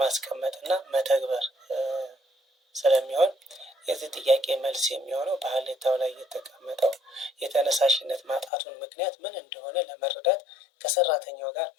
መተግበር ስለሚሆን የዚህ ጥያቄ መልስ የሚሆነው በሀሌታው ላይ የተቀመጠው የተነሳሽነት ማጣቱን ምክንያት ምን እንደሆነ ለመረዳት ከሰራተኛው ጋር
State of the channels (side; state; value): right; drops out; at 8.5 s